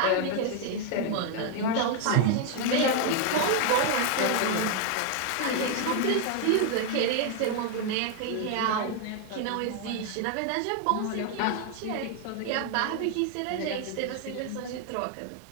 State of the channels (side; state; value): both; different; correlation 0.01